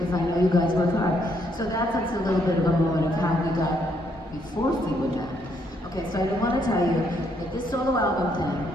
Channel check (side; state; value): both; normal; correlation 0.72